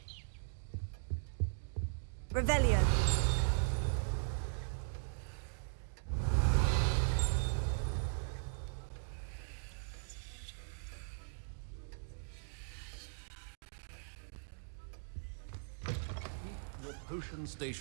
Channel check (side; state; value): left; silent; digital silence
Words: Revelio. Your potion